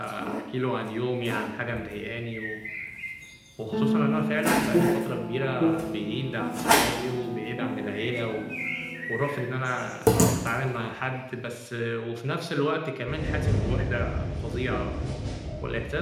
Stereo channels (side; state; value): both; identical; correlation 1.00